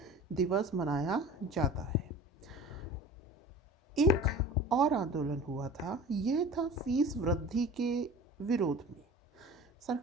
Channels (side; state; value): both; normal; correlation 0.40